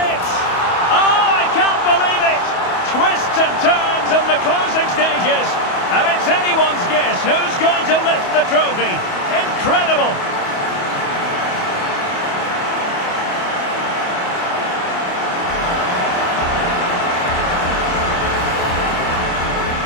Oh, I can't believe it! Twists and turns in the closing stages. And it's anyone's guess who's going to lift the trophy. Incredible!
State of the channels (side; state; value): right; late; 28 ms